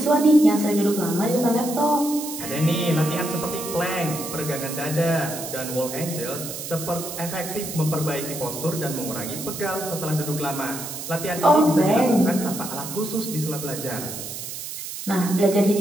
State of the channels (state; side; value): noise; right; hiss, 8 dB below the sound